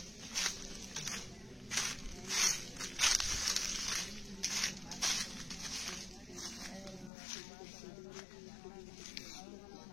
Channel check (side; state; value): right; drops out; at 7.1 s